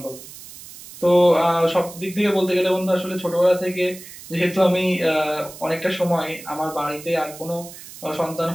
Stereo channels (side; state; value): right; noise; hiss, 16 dB below the sound